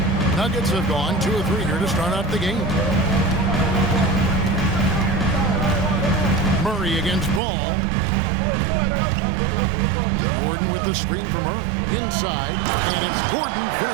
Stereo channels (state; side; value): drops out; left; at 7.4 s